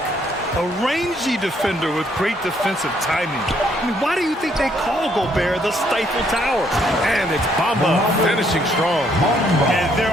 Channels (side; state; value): both; normal; correlation 0.69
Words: A rangy defender with great defensive timing. I mean, why do you think they call Gobert the Stifle Tower? And it's Bamba finishing strong. And their